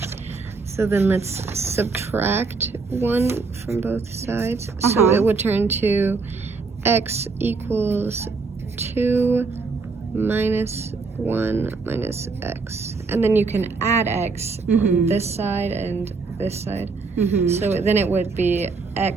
So then let's subtract 1 from both sides. So it would turn to x equals 2 minus 1 minus x. And then you can add x on this side and this side. So then it would be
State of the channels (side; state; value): left; quieter; 4.4 dB